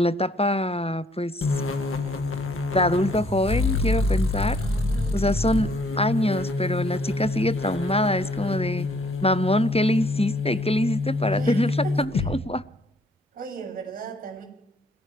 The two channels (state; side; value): normal; both; correlation 0.64